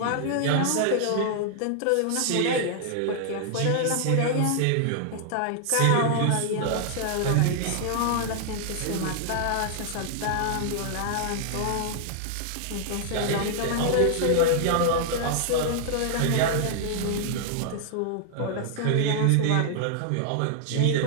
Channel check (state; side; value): different; both; correlation 0.00